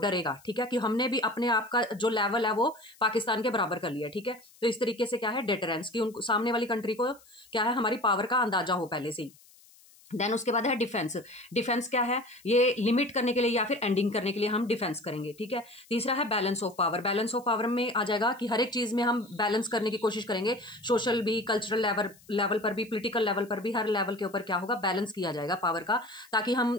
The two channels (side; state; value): left; noise; hiss, 26 dB below the sound